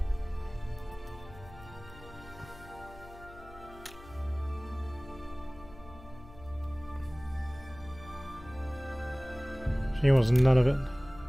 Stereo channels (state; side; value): noise; left; hum, 19 dB below the sound